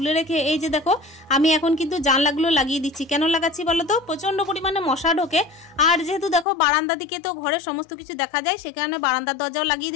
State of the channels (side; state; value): right; drops out; at 6.5 s